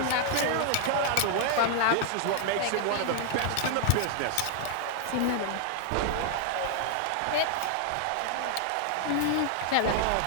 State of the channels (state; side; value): different; both; correlation 0.00